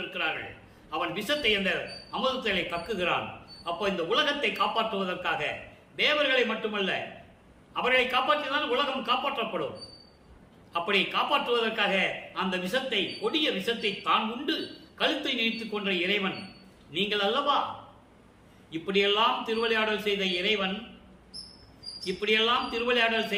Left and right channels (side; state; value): both; identical; correlation 1.00